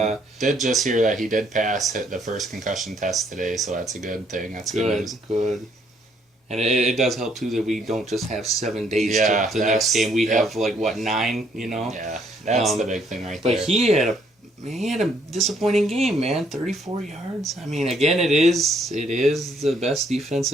did just hear that he did pass the first concussion test today, so that's a good thing. That's good news. Good. And it does help, too, that we don't just have 7 days to the next game. We have, 9, Yeah, that's the big thing there. But he had a disappointing game, man. 34 yards. Again, it is the best defense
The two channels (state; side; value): normal; both; correlation 0.67